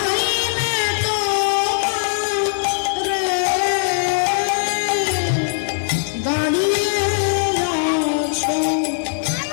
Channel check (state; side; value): silent; right; 66 dB below the other